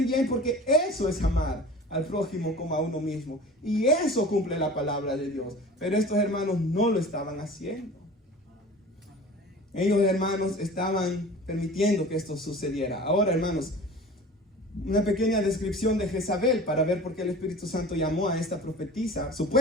bien, porque eso es amar al prójimo como a uno mismo. Y eso cumple la palabra de Dios. Pero estos hermanos no lo estaban haciendo. Ellos, hermanos, estaban permitiendo que esto sucediera. Ahora, hermanos, una pequeña descripción de Jezabel para ver por qué el Espíritu Santo llamó a esta profetisa,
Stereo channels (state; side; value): normal; both; correlation 0.40